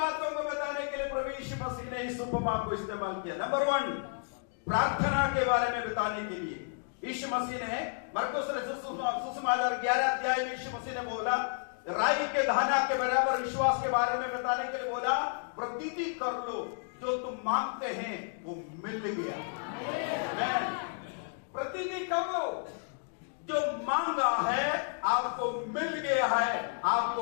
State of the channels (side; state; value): right; silent; digital silence